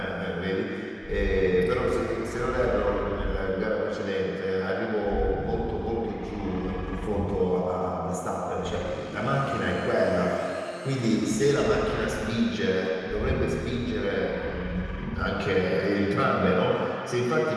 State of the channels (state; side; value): identical; both; correlation 1.00